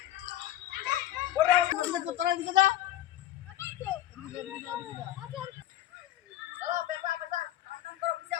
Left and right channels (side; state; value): right; quieter; 13.2 dB